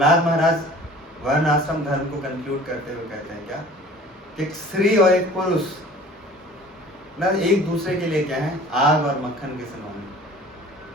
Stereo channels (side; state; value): both; normal; correlation 0.46